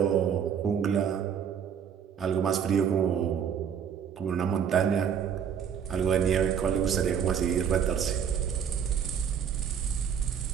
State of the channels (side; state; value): left; quieter; 7.9 dB